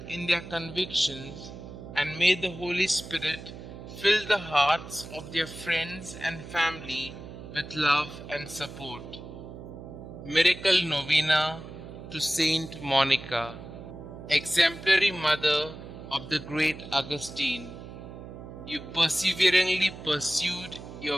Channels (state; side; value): noise; right; hum, 13 dB below the sound